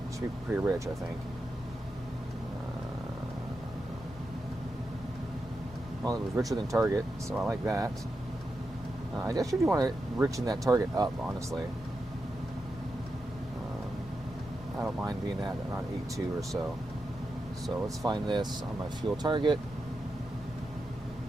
Should be pretty rich, I think. Well, it was richer than target, so I like that. I guess you do want to richen that target up, honestly. I don't mind being at around 8.2 or so. So let's find this on my fuel target.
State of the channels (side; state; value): both; normal; correlation 0.88